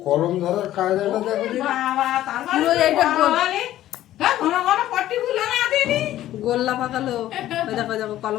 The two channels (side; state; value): right; quieter; 13.6 dB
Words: কলম ধরার কায়দাটা দেখো। পুরো এইটা গোল্লা পাকালো। ওই দেখো দেখো